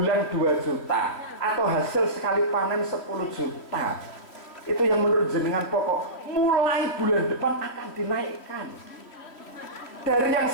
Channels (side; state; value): right; late; 3.0 ms